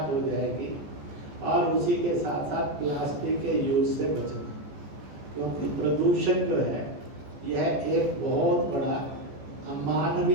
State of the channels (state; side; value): late; left; 14 ms